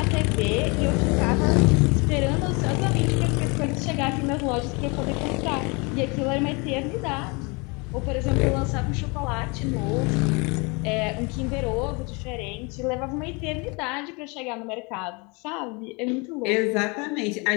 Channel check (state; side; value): quieter; right; 29.5 dB